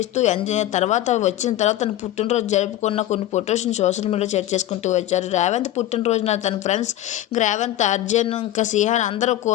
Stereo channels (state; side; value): quieter; right; 13.5 dB